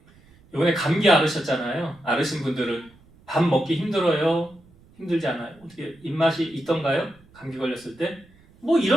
이번에 감기 앓으셨잖아요. 앓으신 분들은 밥 먹기 힘들어요? 힘들지 않아요? 어떻게 입맛이 있던가요? 감기 걸렸을 때? 뭐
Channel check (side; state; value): right; noise; rumble, 28 dB below the sound